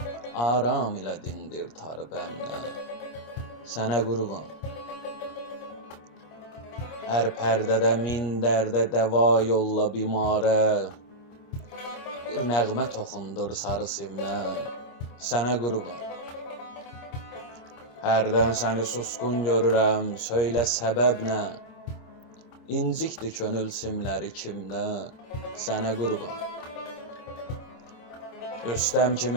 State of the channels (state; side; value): late; right; 26 ms